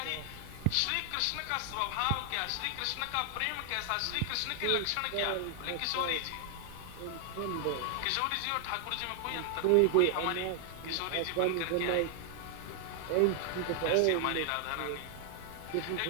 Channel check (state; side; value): different; both; correlation 0.00